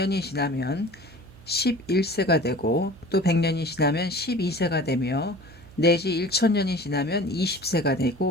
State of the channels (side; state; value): right; noise; hum, 22 dB below the sound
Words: 지나면 11세가 되고 또 100년이 지나면 12세가 되며 내지 1000년이 지나면 20세가